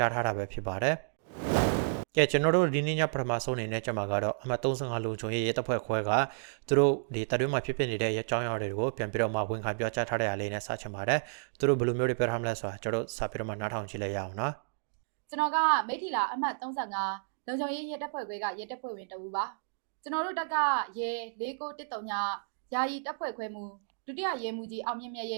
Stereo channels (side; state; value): left; silent; digital silence